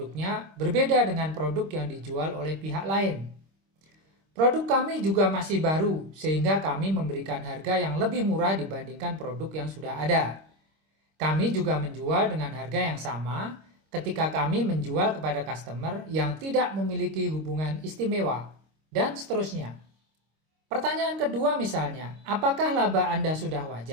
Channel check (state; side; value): late; left; 26 ms